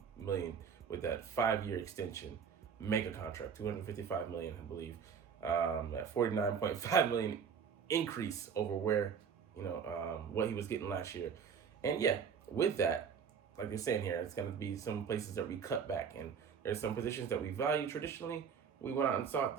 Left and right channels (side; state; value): left; quieter; 6.9 dB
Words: million with that 5-year extension, mega contract, $255 million, I believe. That $49.5 million increase over where what he was getting last year. And yeah, with that, like they're saying here, it's going to be some places that we cut back, and there's some positions that we value traditionally. We went out and sought